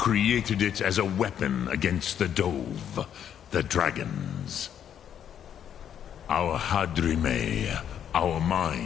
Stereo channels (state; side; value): quieter; right; 9.3 dB